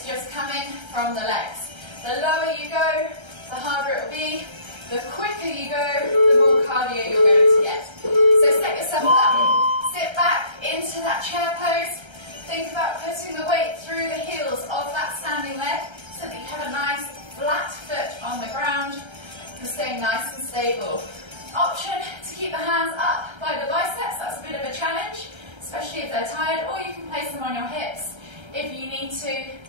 just coming from the legs. The lower you go, the harder it will be. The quicker you go, the more cardio you're going to get. So set yourself up, sit back into that chair pose. Think about putting the weight through the heels of that standing leg so that you have a nice flat foot staying nice and stable. Option to keep the hands up by the biceps, that's a bit of a challenge, especially if they're tired, or you can place them on your hips if you need to.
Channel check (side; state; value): left; late; 1.3 ms